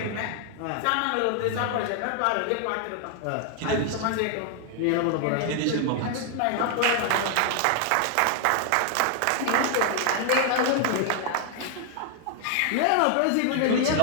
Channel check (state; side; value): different; both; correlation 0.00